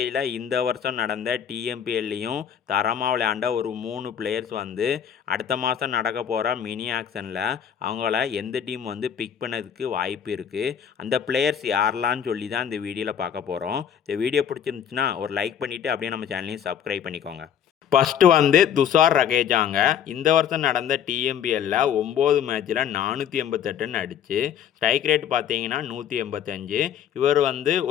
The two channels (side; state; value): right; quieter; 8.9 dB